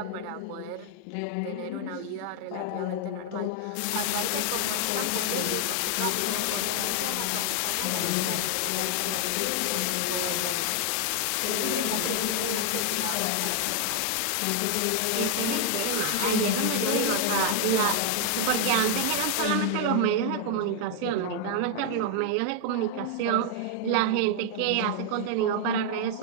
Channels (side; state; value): both; different; correlation 0.00